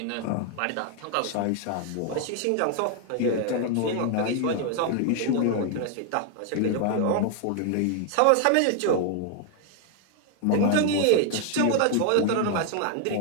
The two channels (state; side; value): different; both; correlation 0.00